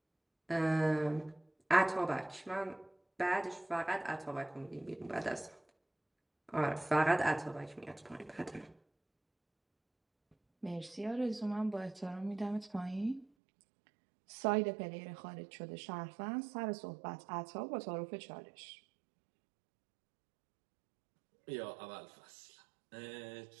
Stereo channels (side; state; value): left; drops out; at 13.2 s